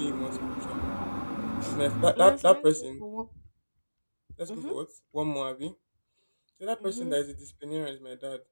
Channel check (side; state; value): both; inverted; correlation -1.00